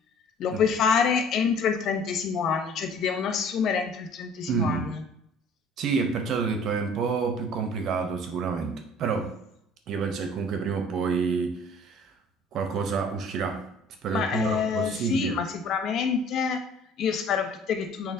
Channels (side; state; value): both; normal; correlation 0.51